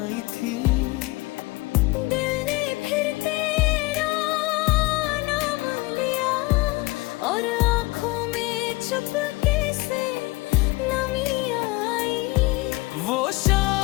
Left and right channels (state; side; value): quieter; right; 22.3 dB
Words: थी। दिल ने फिर तेरा नाम लिया, और आँखों में चुपके से नमी आई। वो